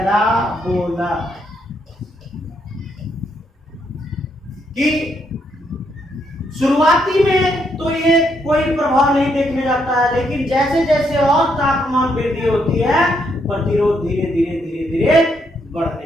कि शुरुआती में तो ये कोई प्रभाव नहीं देखने जाता है, लेकिन जैसे जैसे और तापमान वृद्धि होती है प्रतिरोध धीरे धीरे धीरे धीरे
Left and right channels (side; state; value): both; normal; correlation 0.75